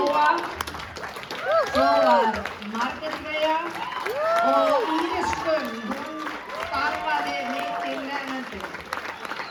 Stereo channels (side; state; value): both; identical; correlation 1.00